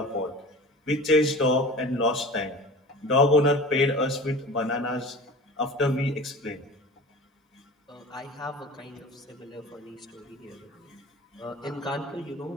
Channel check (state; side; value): normal; both; correlation 0.38